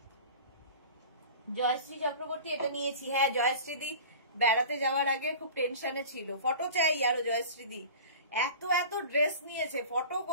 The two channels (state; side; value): inverted; both; correlation -0.38